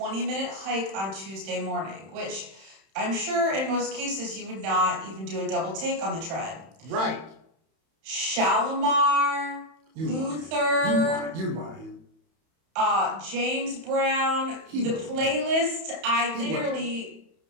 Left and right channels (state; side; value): late; left; 31 ms